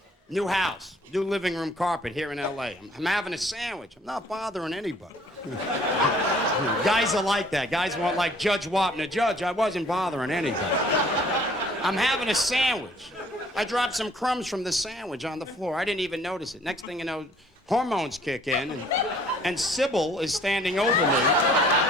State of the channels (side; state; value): both; normal; correlation 0.57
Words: New house. New living room carpet here in L.A. I'm having a sandwich. I'm not bothering anybody. Guys are like that. Guys want like Judge Wapner. Judge, I wasn't bothering anybody. I'm having a sandwich. I dropped some crumbs from the sandwich on the floor. I didn't even notice it. Next thing you know, hormones kick in, and Sybil is standing over me.